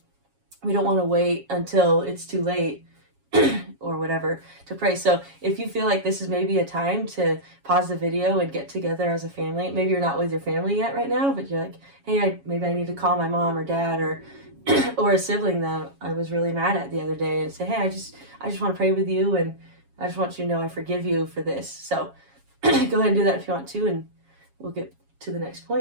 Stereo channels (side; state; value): left; late; 7.2 ms